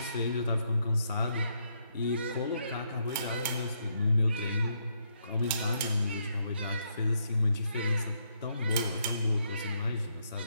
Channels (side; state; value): both; inverted; correlation -0.76